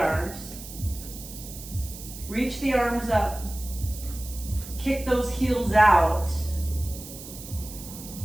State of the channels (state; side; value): noise; right; hiss, 13 dB below the sound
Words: Reach the arms up. Kick those heels out.